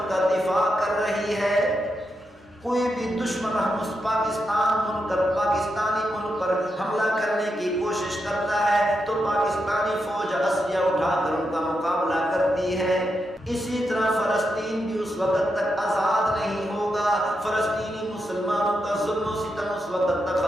کا دفاع کر رہی ہے، کوئی بھی دشمن پاکستانی ملک پر حملہ کرنے کی کوشش کرتا ہے تو پاکستان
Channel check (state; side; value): normal; both; correlation 0.85